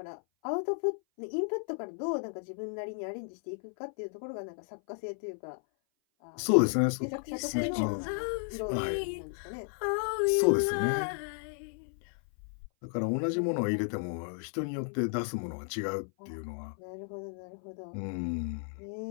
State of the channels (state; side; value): silent; right; 55 dB below the other